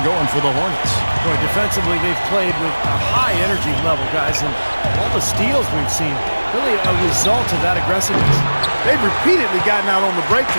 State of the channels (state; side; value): inverted; both; correlation -1.00